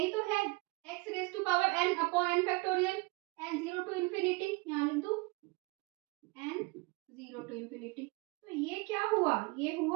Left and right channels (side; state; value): left; quieter; 26.3 dB